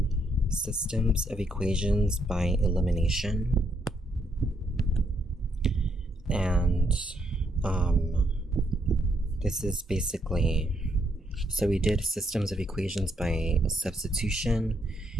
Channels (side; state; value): both; normal; correlation 0.74